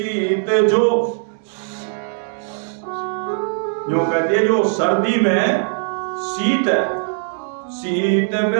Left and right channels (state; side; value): silent; left; 66 dB below the other